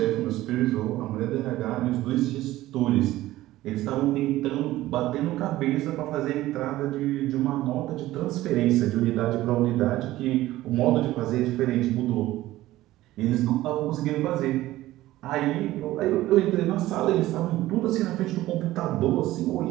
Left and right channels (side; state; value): left; quieter; 16.0 dB